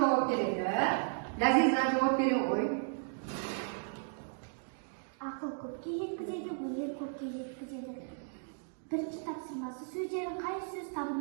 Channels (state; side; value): silent; left; digital silence